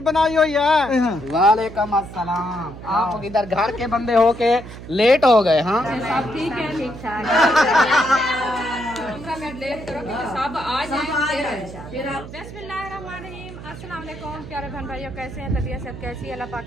बनाई हुई है? वालेकुम अस्सलाम। आप इधर घर के बंदे हो के लेट हो गए। हाँ सब ठीक है, ठीक ठाक। सब आ जाए फिर आप। बिस्मिल्लाहिर्रहमानिर्रहीम। अस्सलाम वालेकुम प्यारे बहन भाइयों, कैसे हैं? तबीयत सब कैसी है? अल्लाह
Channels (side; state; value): right; noise; hum, 13 dB below the sound